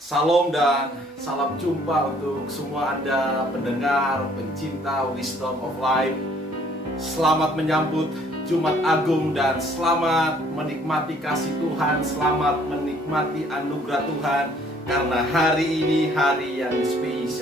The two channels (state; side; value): normal; both; correlation 0.60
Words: Salam dan salam jumpa untuk semua Anda pendengar, pencinta Wisdom of Life. Selamat menyambut Jumat Agung dan selamat menikmati kasih Tuhan, selamat menikmati anugerah Tuhan. Karena hari ini hari yang